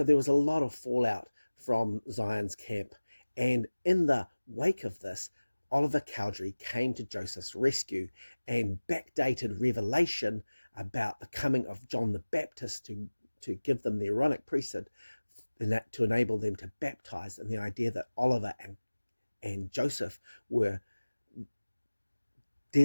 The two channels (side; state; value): both; inverted; correlation -1.00